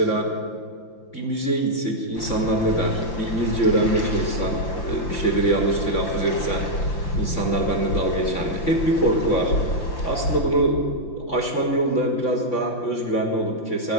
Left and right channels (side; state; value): right; late; 5.9 ms